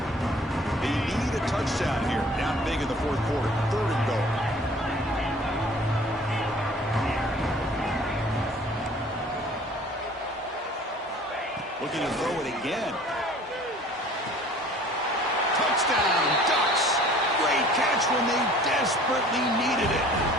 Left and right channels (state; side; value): normal; both; correlation 0.50